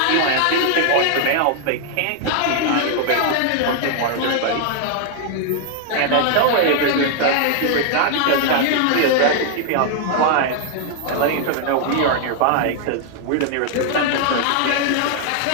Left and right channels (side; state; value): both; different; correlation 0.00